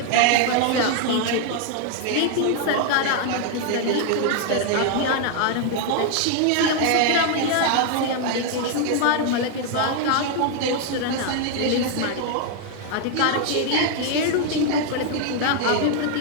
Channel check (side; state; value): both; different; correlation 0.00